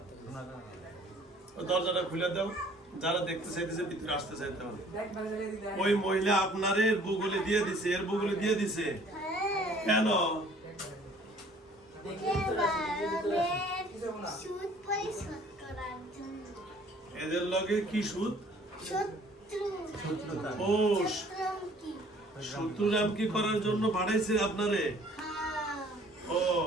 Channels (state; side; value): normal; both; correlation 0.55